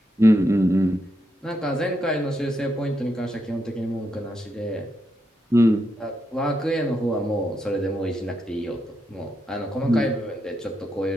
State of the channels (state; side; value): normal; both; correlation 0.82